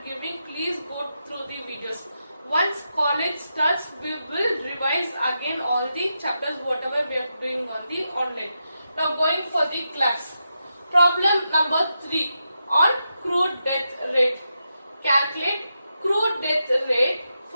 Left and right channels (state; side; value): inverted; both; correlation -0.86